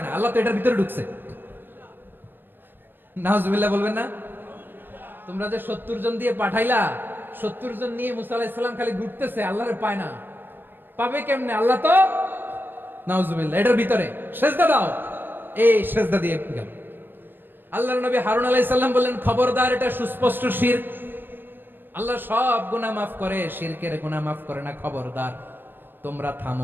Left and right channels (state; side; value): late; left; 0.097 ms